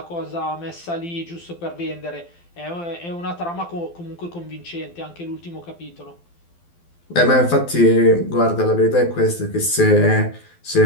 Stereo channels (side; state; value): right; late; 12 ms